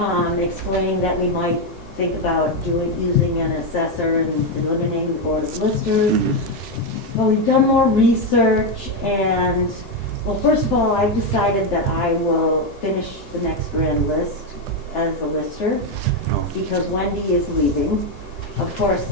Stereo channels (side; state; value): both; normal; correlation 0.06